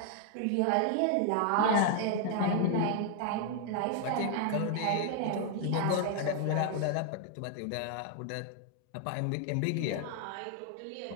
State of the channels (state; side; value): different; both; correlation 0.00